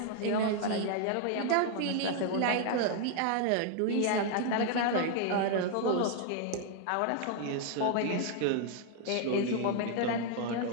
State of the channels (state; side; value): different; both; correlation 0.00